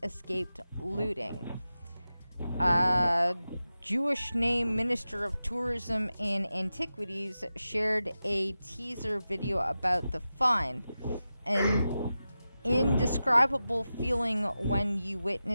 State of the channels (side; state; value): both; inverted; correlation -0.93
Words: escaped looting. Jewish name Minister of Tourism and Antiquities shared a teaser video about the find. An indescribable feeling when you